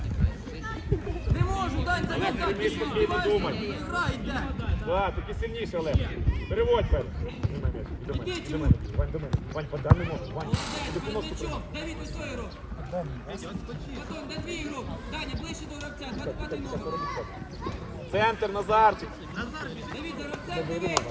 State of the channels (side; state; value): both; identical; correlation 1.00